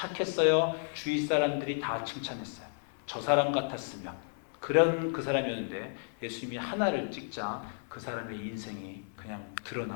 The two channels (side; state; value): right; silent; digital silence